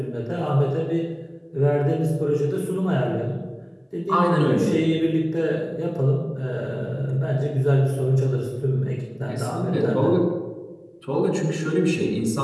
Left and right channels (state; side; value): identical; both; correlation 1.00